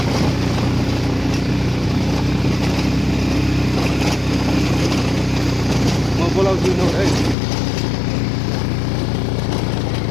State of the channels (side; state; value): right; drops out; at 7.4 s